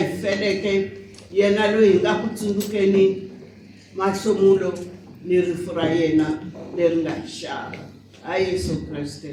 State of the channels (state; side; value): identical; both; correlation 1.00